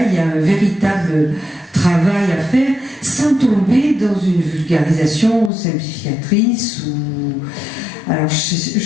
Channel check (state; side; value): drops out; right; at 5.5 s